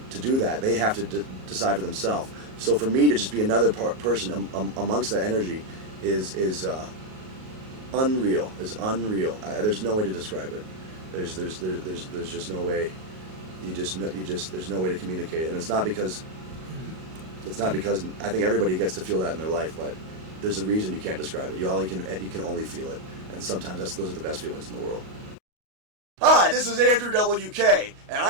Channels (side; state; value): left; late; 38 ms